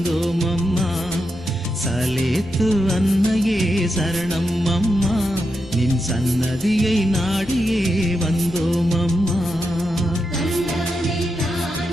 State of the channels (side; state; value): both; normal; correlation 0.86